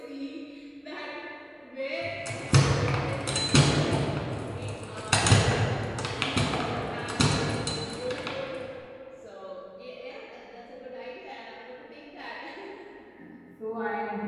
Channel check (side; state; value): both; identical; correlation 1.00